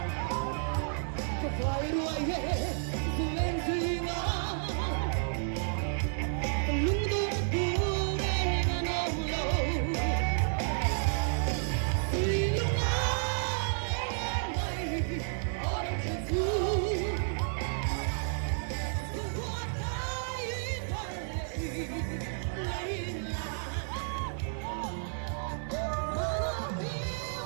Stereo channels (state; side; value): silent; left; 57 dB below the other